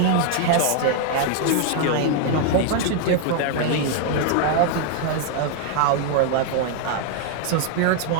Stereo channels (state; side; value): different; both; correlation 0.00